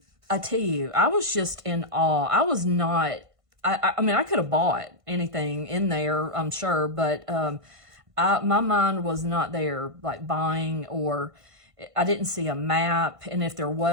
tell you, I was just in awe. I was not, I mean, I could have bought anything in there, I'm sure, but my mind was not there, like buying, or I didn't see a map. And if there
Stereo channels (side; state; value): left; late; 1.5 ms